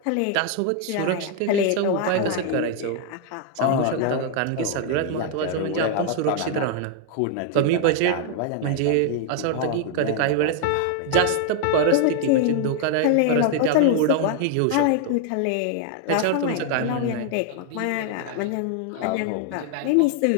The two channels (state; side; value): different; both; correlation 0.00